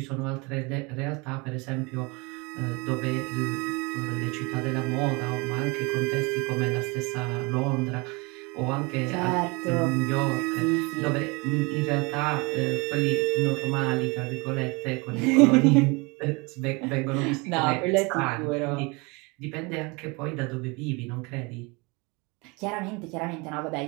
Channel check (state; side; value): quieter; left; 27.7 dB